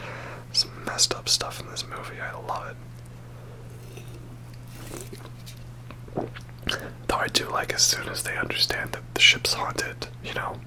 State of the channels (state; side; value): identical; both; correlation 1.00